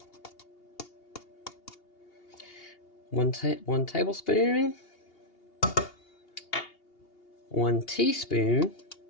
One tablespoon, 1 teaspoon,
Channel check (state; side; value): late; right; 2.8 ms